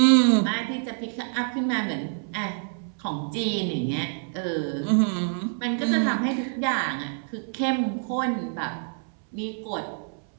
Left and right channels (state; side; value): silent; left; 61 dB below the other